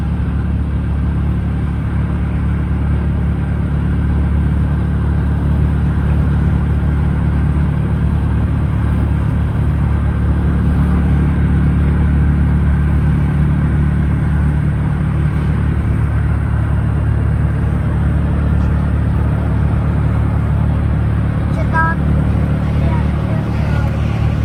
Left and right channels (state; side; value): identical; both; correlation 1.00